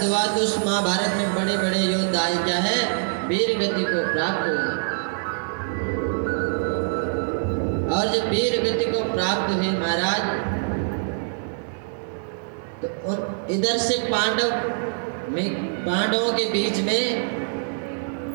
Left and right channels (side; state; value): left; silent; digital silence